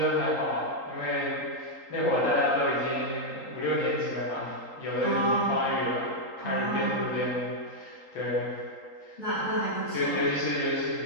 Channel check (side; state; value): right; late; 3.8 ms